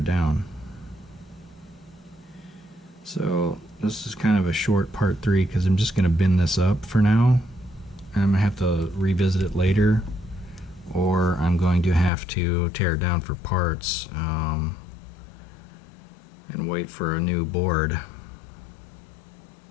down. So this is kind of a short part 3 because I'm just going to bin this up for now, and I'm going to have to revisit it later, or I'm going to have to tear it down for parts. and wait for a new board.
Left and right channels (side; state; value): right; drops out; at 12.1 s